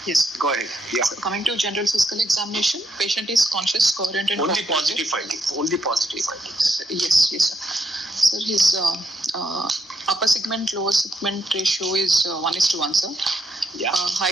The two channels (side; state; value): both; normal; correlation 0.77